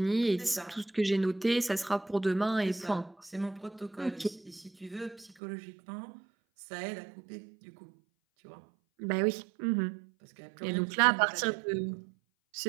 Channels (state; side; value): drops out; left; at 5.4 s